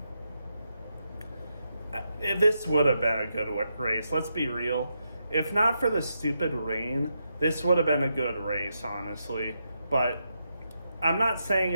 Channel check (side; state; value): both; inverted; correlation -0.83